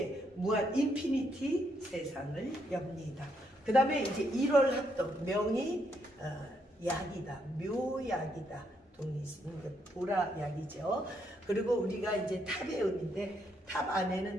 무한 인피니티 세상을 엽니다. 그 다음에 이제 1월 합덕, 명이 약이다, 묘약이다. 보라약이죠. 그리고 우리가 이제 탑의 의미인데, 탑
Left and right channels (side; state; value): both; normal; correlation 0.75